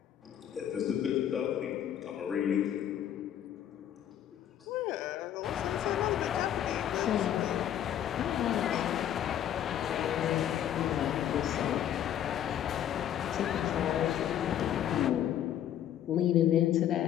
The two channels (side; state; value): right; quieter; 10.7 dB